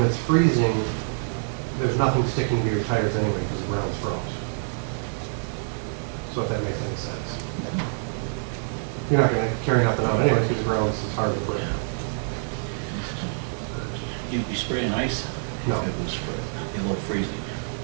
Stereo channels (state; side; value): silent; left; 61 dB below the other